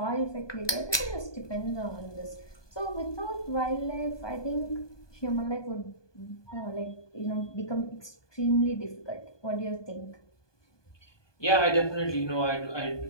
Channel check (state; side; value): late; right; 1.2 ms